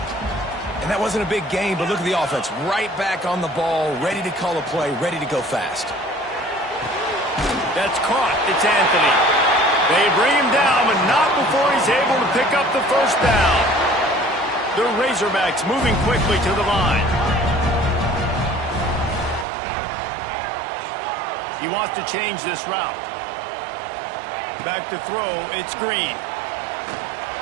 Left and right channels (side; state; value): left; drops out; at 19.5 s